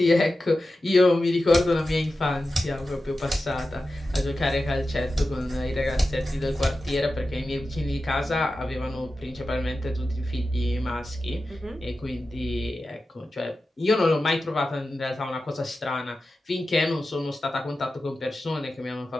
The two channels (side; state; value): both; normal; correlation 0.93